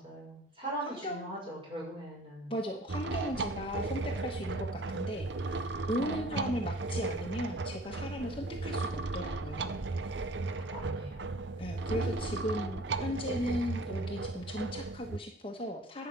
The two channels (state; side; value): normal; both; correlation 0.48